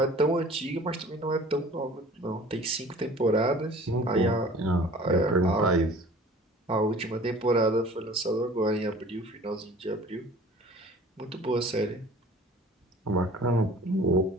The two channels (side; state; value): both; normal; correlation 0.47